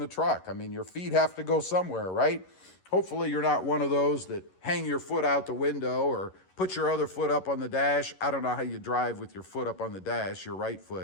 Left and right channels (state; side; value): late; right; 11 ms